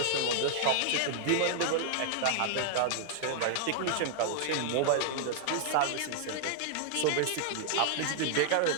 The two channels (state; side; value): different; both; correlation -0.01